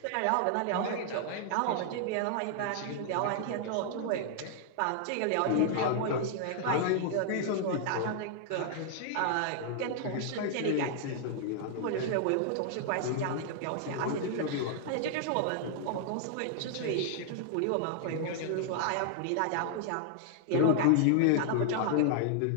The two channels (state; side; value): different; both; correlation -0.01